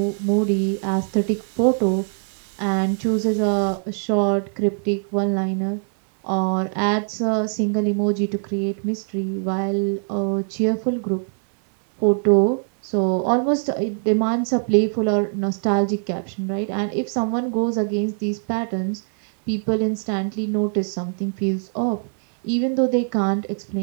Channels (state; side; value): silent; left; digital silence